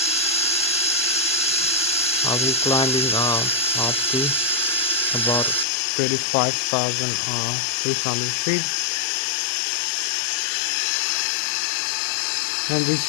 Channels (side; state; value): right; drops out; at 5.7 s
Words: I'll be climbing up to about 35,300 feet. And this